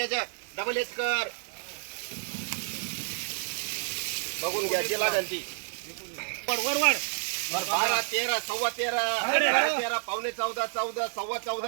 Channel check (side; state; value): left; silent; 57 dB below the other